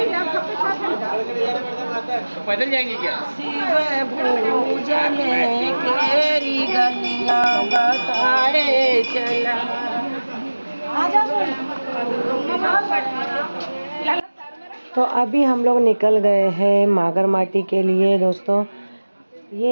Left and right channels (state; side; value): inverted; both; correlation -1.00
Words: पैदल जाएंगे क्या? शिव पूजन केरी गलियां बताए चला। तो अभी हम लोग निकल गए हैं मागरमाटी के लिए दोस्तों।